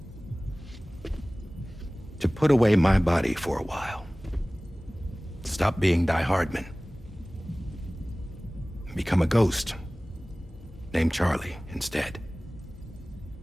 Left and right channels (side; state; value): both; normal; correlation 0.98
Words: To put away my body for a while. Stop being Die Hardman. Become a ghost. Named Charlie instead.